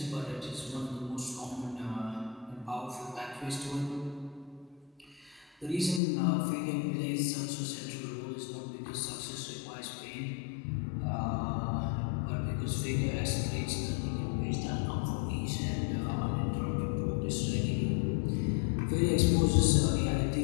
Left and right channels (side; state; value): right; drops out; at 6.0 s